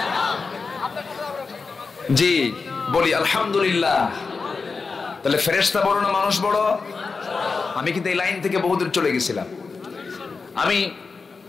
জি বলি আলহামদুলিল্লাহ। তাহলে ফেরেশতা বড় না মানুষ বড়? আমি কিন্তু এই লাইন থেকে বহুদূর চলে গেছিলাম। আমি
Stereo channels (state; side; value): quieter; right; 4.6 dB